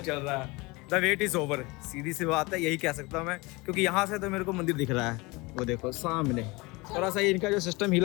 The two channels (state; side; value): quieter; right; 24.5 dB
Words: चल रहा है। द वेट इज ओवर, सीधी सी बात है, यही कह सकता हूँ मैं, क्योंकि यहाँ से तो मेरे को मंदिर दिख रहा है, वो देखो सामने। थोड़ा सा इनका जो सिस्टम